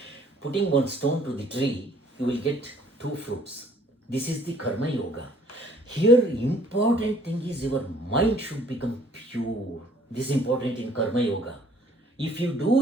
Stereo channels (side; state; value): both; normal; correlation 0.59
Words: Putting one stone to the tree, you will get 2 fruits. This is the Karma Yoga. Here, important thing is your mind should become pure. This is important in Karma Yoga. If you do